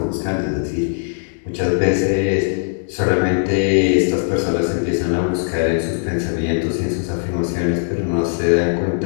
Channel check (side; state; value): right; silent; digital silence